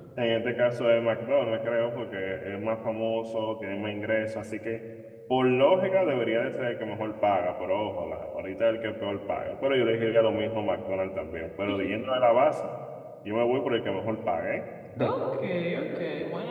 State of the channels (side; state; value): both; identical; correlation 1.00